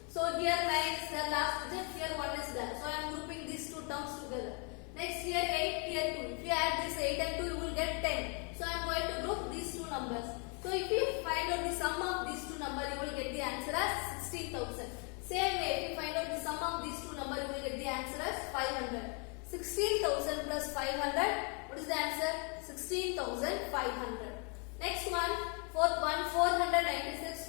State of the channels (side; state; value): right; quieter; 36.1 dB